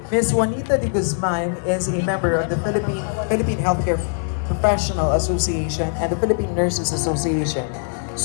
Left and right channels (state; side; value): silent; right; digital silence